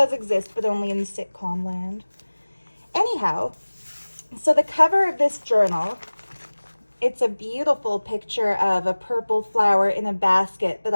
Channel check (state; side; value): inverted; both; correlation -1.00